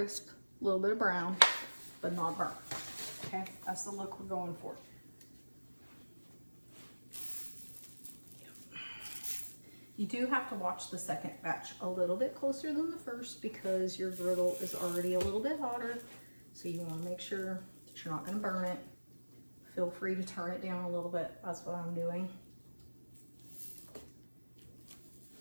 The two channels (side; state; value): both; inverted; correlation -1.00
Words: a little bit of brown, but not burnt. Okay, that's the look we're going for. You do have to watch the second batch a little bit closer than the first because your griddle is already a little bit hotter. So you want to make sure that you're not going to burn it. Feel free to turn it down a little bit. That's what I'm doing.